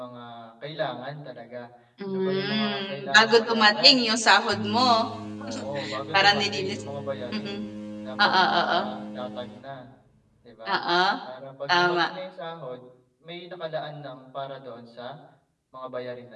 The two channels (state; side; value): identical; both; correlation 1.00